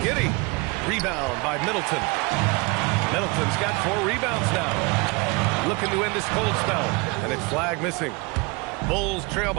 Giddey. Rebound by Middleton. Middleton's got 4 rebounds now. Looking to end his cold spell. And it's flag missing. Bulls trail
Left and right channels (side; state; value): left; quieter; 27.1 dB